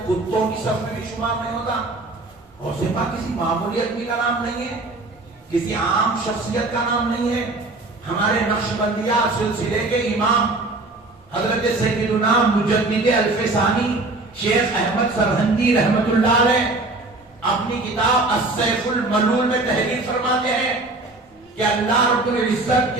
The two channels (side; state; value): left; quieter; 3.1 dB